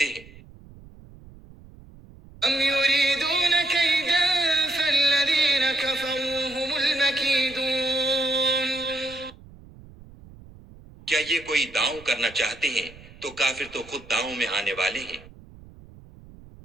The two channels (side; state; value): right; noise; rumble, 21 dB below the sound